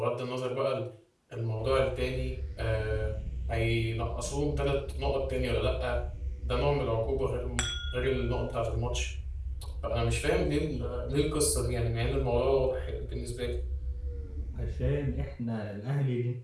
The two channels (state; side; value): identical; both; correlation 1.00